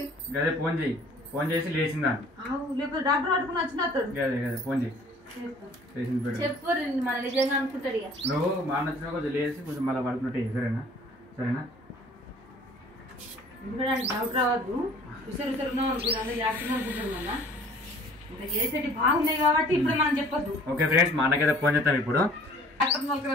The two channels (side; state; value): both; normal; correlation 0.51